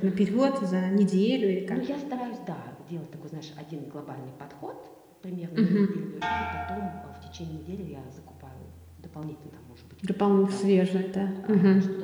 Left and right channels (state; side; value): identical; both; correlation 1.00